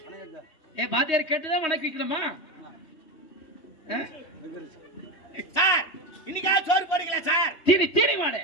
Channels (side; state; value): right; late; 3.2 ms